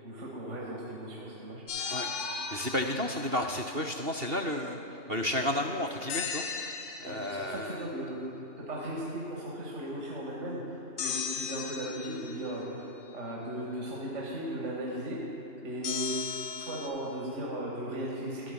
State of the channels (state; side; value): late; left; 2.7 ms